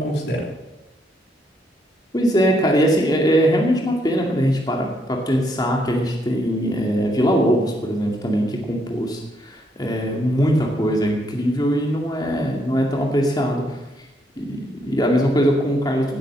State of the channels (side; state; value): both; normal; correlation 0.74